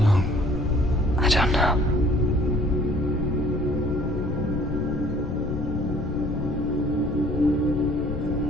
long? I don't know.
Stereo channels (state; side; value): noise; left; rumble, 6 dB below the sound